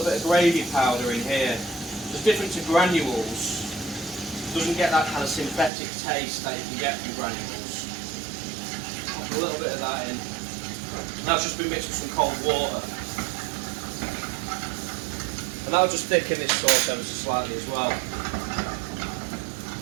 bit of gravy powder in here. It's different to granules. Doesn't get that kind of synthetic taste that you can get from granules. Pop a little bit of that in. And that's just been mixed with some cold water. And that'll just thicken this sauce ever so slightly as well.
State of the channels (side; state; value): left; drops out; at 5.7 s